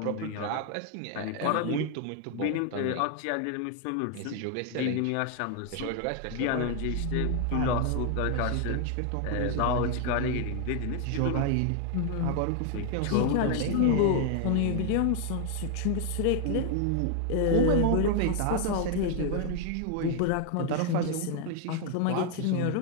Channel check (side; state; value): both; different; correlation 0.00